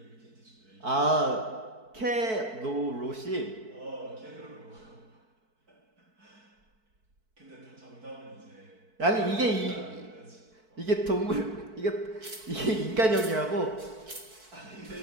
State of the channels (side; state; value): left; late; 4.6 ms